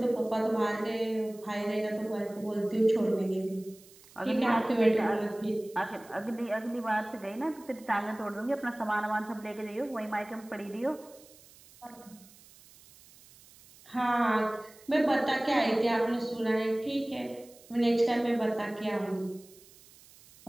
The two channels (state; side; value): noise; right; hiss, 24 dB below the sound